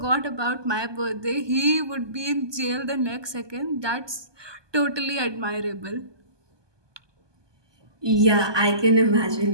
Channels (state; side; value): late; left; 1.2 ms